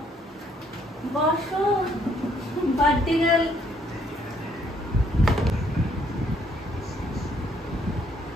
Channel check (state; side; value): normal; both; correlation 0.68